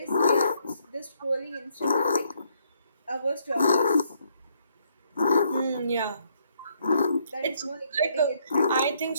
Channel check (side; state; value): both; inverted; correlation -0.71